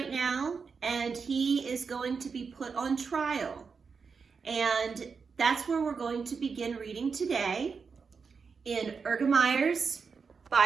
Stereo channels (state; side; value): quieter; left; 5.4 dB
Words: now, and he is going to be put on trial. And that's where we're going to begin reading today in Ergemeyer's